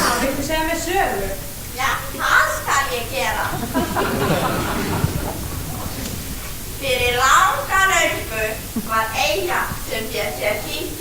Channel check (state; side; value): identical; both; correlation 1.00